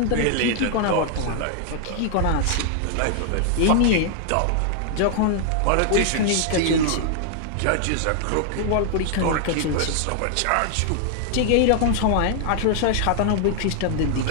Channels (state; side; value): different; both; correlation 0.00